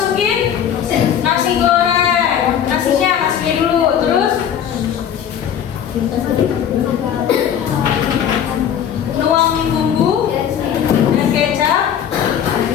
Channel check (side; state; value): right; quieter; 9.0 dB